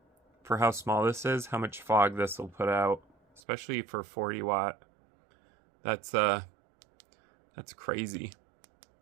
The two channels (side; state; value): left; drops out; at 3.4 s